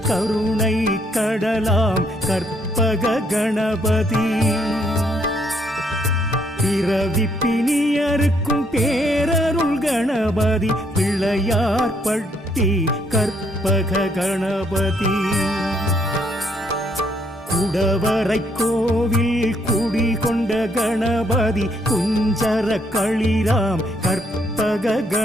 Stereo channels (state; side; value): normal; both; correlation 0.71